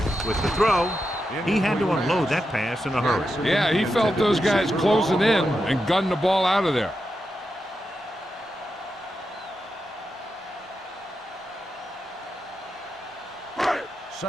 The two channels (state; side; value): normal; both; correlation 0.87